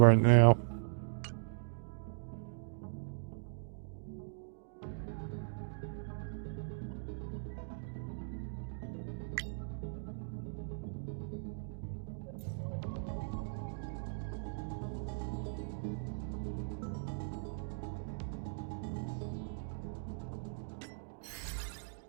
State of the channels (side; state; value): left; silent; digital silence